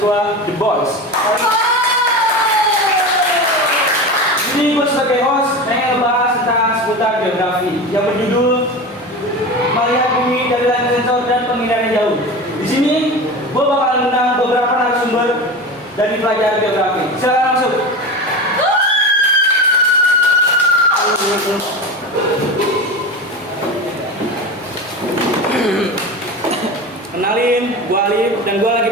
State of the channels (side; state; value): both; normal; correlation 0.26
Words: The Boys. Ini gue sebagai host pengen ngebahas tentang seputar geografi yang berjudul melihat bumi dari layar sensor dan pengindaran jauh. Di sini gue bakal mengundang beberapa narasumber dari pelajaran geografi. Silakan masuk. Kenalin, gue Alif dan gue lagi